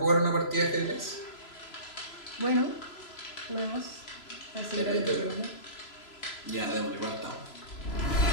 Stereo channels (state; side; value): late; right; 3.0 ms